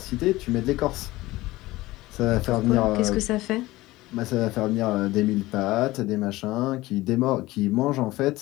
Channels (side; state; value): right; quieter; 18.6 dB